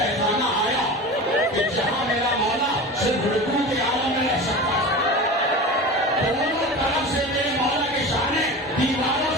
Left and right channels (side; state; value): both; normal; correlation 0.31